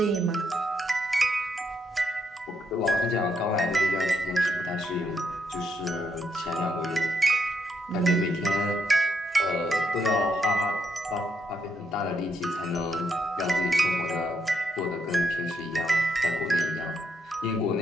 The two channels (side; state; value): both; normal; correlation 0.77